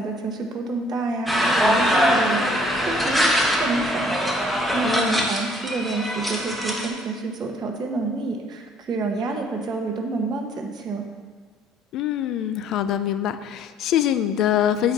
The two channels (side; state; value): both; normal; correlation 0.59